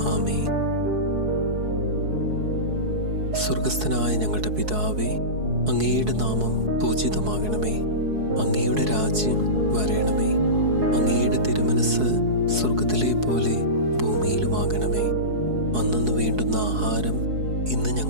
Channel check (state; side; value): late; left; 4.7 ms